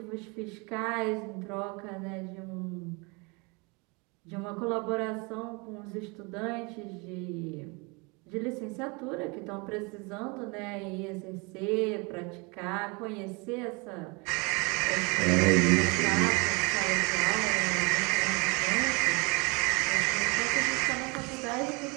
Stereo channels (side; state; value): left; quieter; 29.3 dB